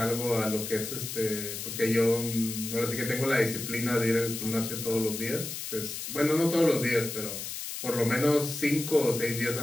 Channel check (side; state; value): left; noise; hiss, 7 dB below the sound